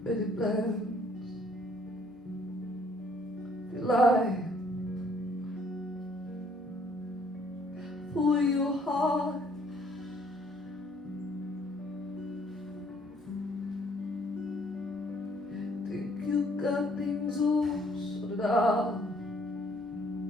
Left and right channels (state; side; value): normal; both; correlation 0.63